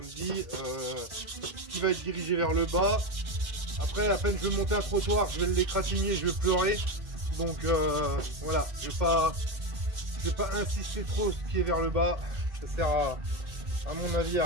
dit qui va être dirigé vers le bas. Après, à peine je vais monter un trottoir, je vais l'égratigner, je vais pleurer. Donc voilà, je vais pas insister trop sur ce qui est vers le bas. Ça sert à mon avis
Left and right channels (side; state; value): left; late; 2.2 ms